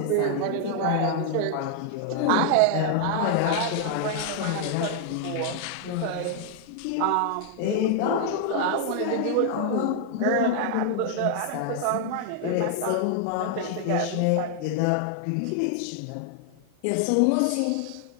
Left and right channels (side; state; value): both; different; correlation 0.00